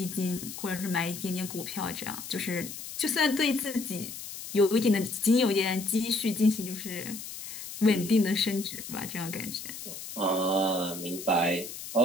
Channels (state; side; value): noise; left; hiss, 10 dB below the sound